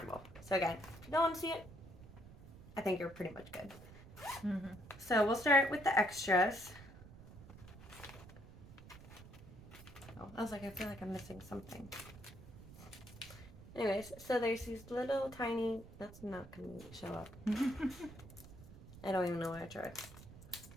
So again, if you don't want to see it, I think you're pretty much good. So we'll start with the extras. Oh, I was like, I feel like I'm missing something. Anyways, so there's these little tiny, that's not going to show up. I don't even know what I tried.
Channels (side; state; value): right; noise; rumble, 17 dB below the sound